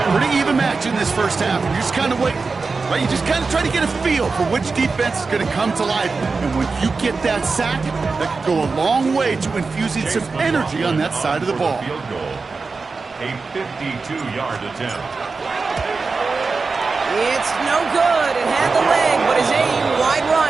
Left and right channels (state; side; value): quieter; left; 4.3 dB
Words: Pretty even match in this first half. You just kind of wait. Right? You just kind of try to get a feel for which defense is going to come to life. And when you get that sack, that can go a long way to infusing some energy on that side of the ball. Field goal. A 52-yard attempt. It's no good. It had the leg, but his aim wide